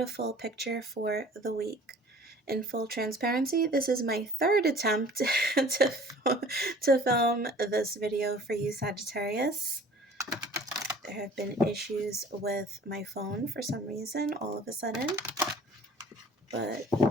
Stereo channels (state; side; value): normal; both; correlation 0.48